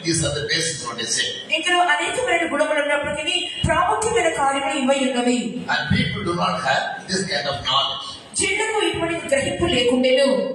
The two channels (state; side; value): identical; both; correlation 1.00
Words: These are the basics what they say. ఇందులో అనేకమైన గుణములు ఉన్నప్పటికీ ప్రాముఖ్యమైన కార్యములు ఇవై ఉన్నవి. And people do not have this kind of knowledge. జనులకు ఇటువంటి గ్రహింపు లేకుండేను.